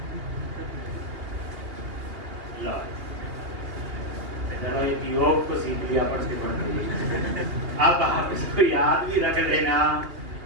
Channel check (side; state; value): left; late; 2.8 ms